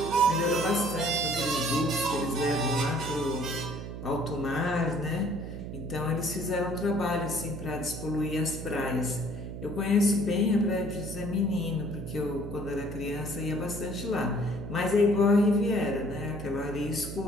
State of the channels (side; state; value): right; noise; hum, 8 dB below the sound